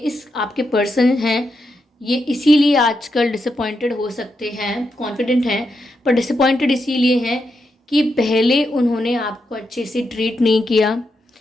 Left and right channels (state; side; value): normal; both; correlation 0.84